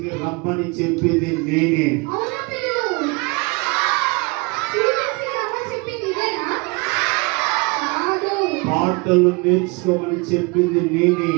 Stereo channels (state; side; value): quieter; left; 28.4 dB